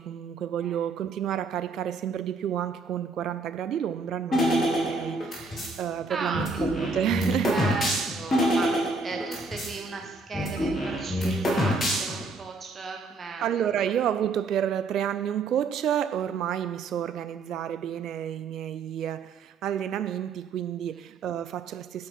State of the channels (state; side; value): quieter; left; 4.0 dB